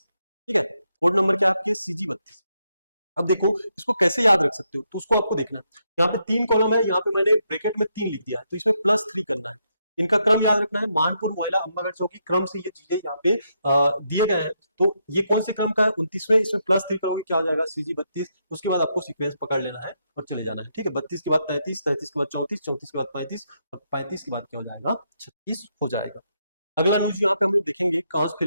ठीक है, कोड नंबर क्या है आपके CG32। अब देखो इसको कैसे याद रख सकते हो, तो उसको आपको देखना है। यहाँ पे 3 कॉलम है, यहाँ पे मैंने ब्रैकेट में 3 लिख दिया है, तो इसमें +3 करना है। इनका क्रम याद रखना है, मानपुर, मोयला, अंबागढ़, चौकी क्रम से ये चीजें यहाँ पे दिए गए हैं। तो ये कौन से क्रम का है, 29वें, इसमें +3 करोगे क्या हो जाएगा, CG32। उसके बाद आपको सीक्वेंस पकड़ लेना है और चले जाना है। ठीक है, 32 के बाद 33, 33 के बाद 34, 34 के बाद 35 और 35 के बाद क्या हो जाएगा, 36 हो जाएगा। अगला न्यूज यहाँ पे हम लोग देखेंगे, कांस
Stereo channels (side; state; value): both; inverted; correlation -0.79